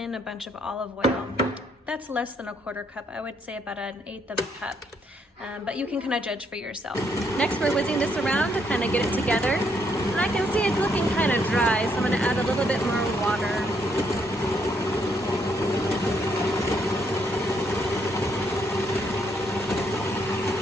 a bunch of olive oil. That's less than a 1/4 cup. I would say about 1/8 of a cup, but you can kind of judge for yourself. Next, we're whizzing this around to kind of get it together. And I can see it's looking kind of dry, so I'm gonna add a little bit more water.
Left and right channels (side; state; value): both; normal; correlation 0.73